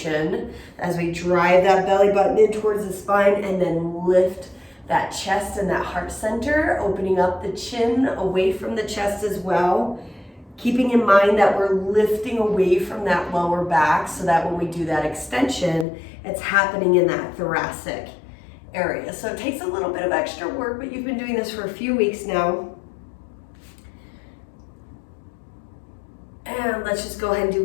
as we drive that belly button in towards the spine and then lift that chest and that heart center, opening up the chin away from the chest as well. Keeping in mind that we're lifting away from that lower back so that when we do that extension, it's happening in that thoracic area. So it takes a little bit of extra work, but you've been doing this for a few weeks now. And let's just go ahead and do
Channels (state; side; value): drops out; right; at 15.9 s